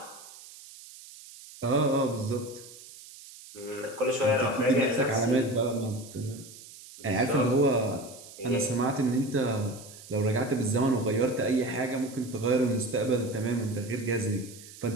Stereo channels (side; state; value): right; noise; hiss, 18 dB below the sound